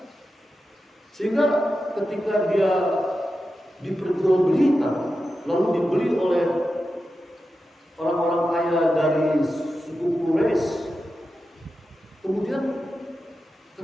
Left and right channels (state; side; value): normal; both; correlation 0.91